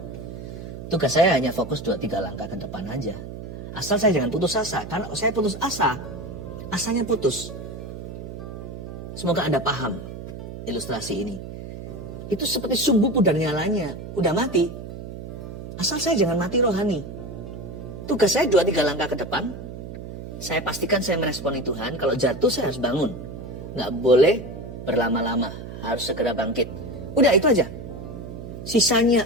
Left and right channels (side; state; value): right; noise; hum, 10 dB below the sound